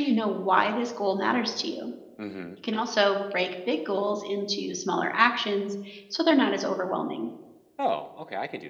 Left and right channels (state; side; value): identical; both; correlation 1.00